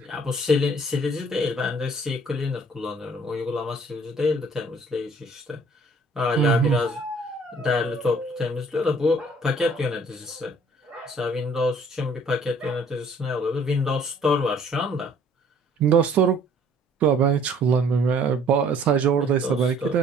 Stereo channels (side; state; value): both; normal; correlation 0.57